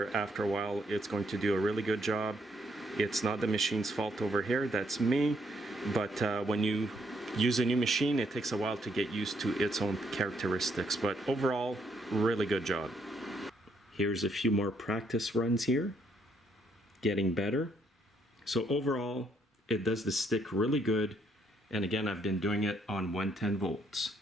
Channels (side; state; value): both; normal; correlation 0.72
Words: after a while it's going to do a really good job. It's not the machine's fault over here, that's me. But when you use a new machine, it takes a while to get used to its own characteristics. But overall, really good job. Here's a few more practice runs here. Getting better. So overall, it does the stick really good. And again, I've been doing it on 110 volts.